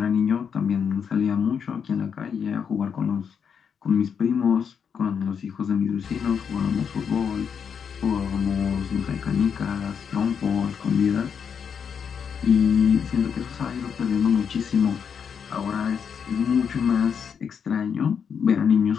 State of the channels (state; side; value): quieter; right; 7.0 dB